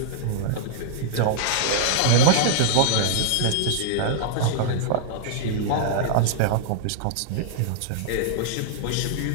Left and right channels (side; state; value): both; different; correlation -0.01